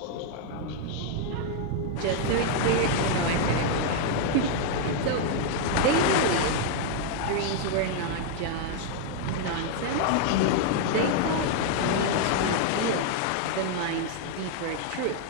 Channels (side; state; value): both; different; correlation 0.00